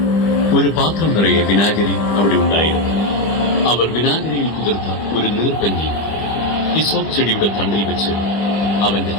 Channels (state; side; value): late; right; 25 ms